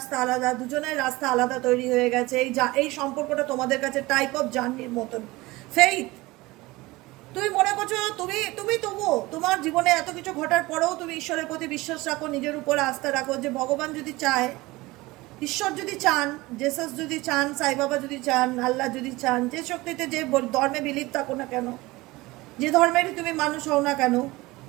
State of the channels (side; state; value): left; quieter; 20.8 dB